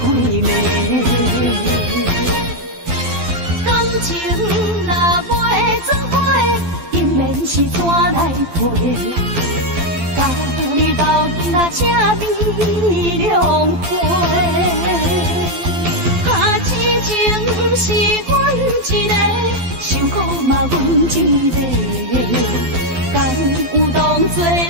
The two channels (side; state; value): left; late; 12 ms